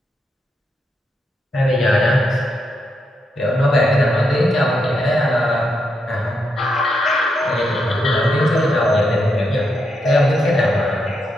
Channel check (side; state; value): both; normal; correlation 0.81